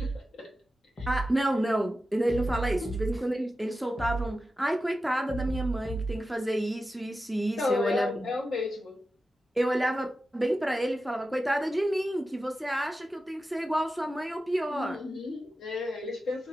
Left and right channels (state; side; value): normal; both; correlation 0.92